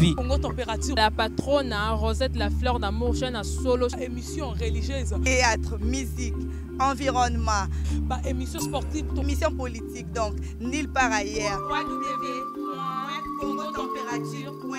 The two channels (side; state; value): both; identical; correlation 1.00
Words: Congo Température. La patronne, Rosette La Fleur d'Amour, chaîne à solo. Émission religieuse. Théâtre, musique, environnement. Bah, émission sportive. Émission politique, donc, nulle part ailleurs.